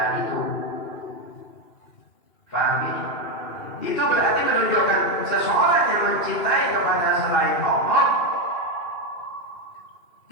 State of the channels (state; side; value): late; right; 2.4 ms